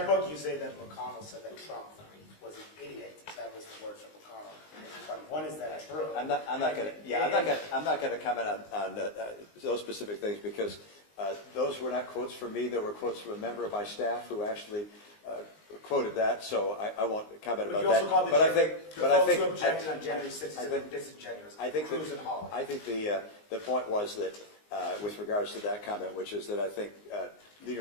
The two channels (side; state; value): right; late; 19 ms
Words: book, you say that McConnell said that Trump was an idiot. That was the words of McConnell. But one is that true? I'm not going to comment on those specific things because those were not quotes from me. They were quotes from a member of my staff who actually quoted that. So I won't comment about that. But I think who objected on January 6th are disingenuous. Cruz and Hawley. I think the point was that with regards to that comment, which is that I think Leader